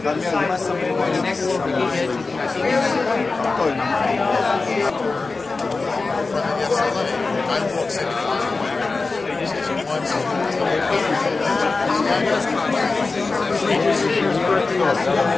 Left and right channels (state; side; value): quieter; right; 3.9 dB